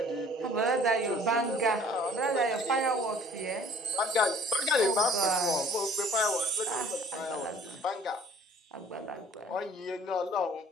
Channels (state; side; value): normal; both; correlation 0.53